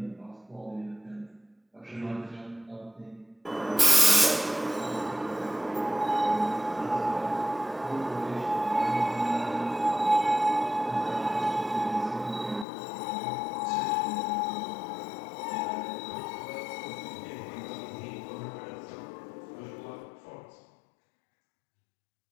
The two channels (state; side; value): drops out; right; at 12.7 s